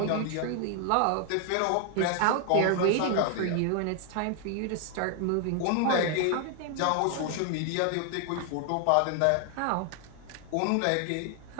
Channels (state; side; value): different; both; correlation 0.00